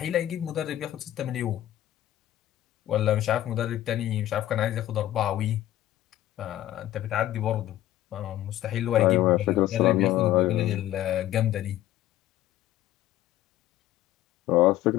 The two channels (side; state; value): right; quieter; 13.7 dB